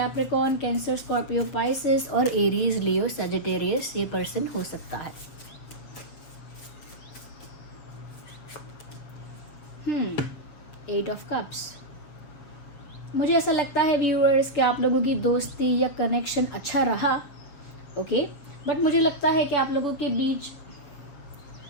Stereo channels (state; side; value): late; right; 7.1 ms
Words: कैंसर, स्कॉर्पियो, पाइसेस और एरीज, लियो, सजिटेरियस ये पर्सन हो सकता है। 8 ऑफ कप्स। मुझे ऐसा लगता है व्यूअर्स कि आप लोगों की दोस्ती या कनेक्शन अच्छा रहा, ओके, बट मुझे लगता है कि आप लोगों के बीच